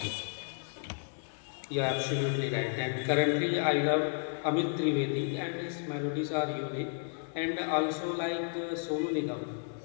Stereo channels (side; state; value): right; silent; 56 dB below the other